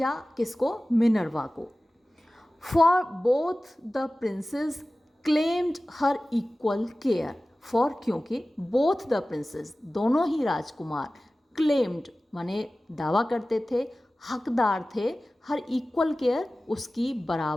किसको, मिनर्वा को। For both the princess claimed her equal care, for क्योंकि बोथ द प्रिंसेस दोनों ही राजकुमार, क्लेम्ड माने दावा करते थे, हकदार थे, हर इक्वल केयर उसकी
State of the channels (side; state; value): both; normal; correlation 0.97